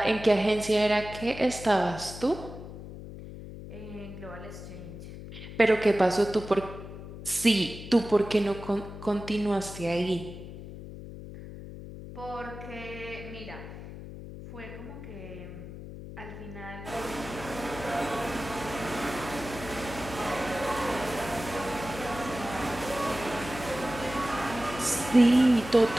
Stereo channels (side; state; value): left; noise; hum, 12 dB below the sound